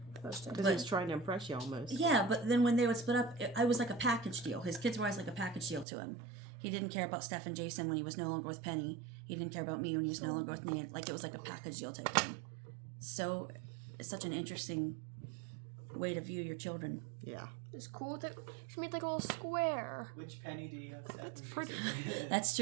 Because he was trying to impress you almost. Yeah, but then when they would split up, I was like a package deal. His kids were always like a package deal to him. He didn't care about Steph and Jason when he was no longer with Penny. He didn't care about me when he was no longer with Nanny. Like, it was like a package deal type thing. So, it's such an interesting way to view your children. Yeah. It's cool that she made like a little square. Which penny do you have Steph? That's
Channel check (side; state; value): left; drops out; at 5.9 s